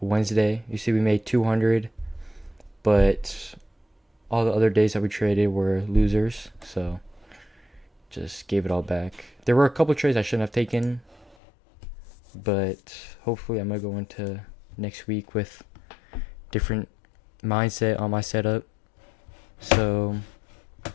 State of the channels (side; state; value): right; drops out; at 11.4 s